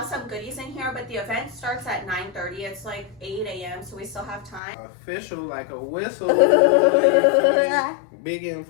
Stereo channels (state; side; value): drops out; right; at 4.6 s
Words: some goodies in here, but the event starts at 9:30. It's like 8 a.m., so we still have time. Official like a whistle. Big